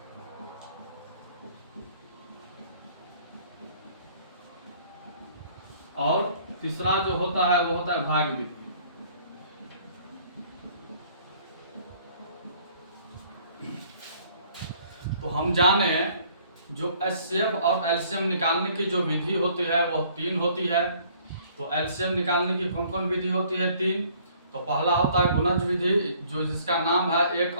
और तीसरा जो होता है वो होता है भाग विधि। तो हम जाने जो एचसीएफ और एलसीएम निकालने की जो विधि होती है वो 3 होती है। तो एलसीएम निकालने की कौन कौन विधि होती है, 3। तो पहला होता है गुणज विधि जो जिसका नाम है एक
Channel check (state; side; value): inverted; both; correlation -0.58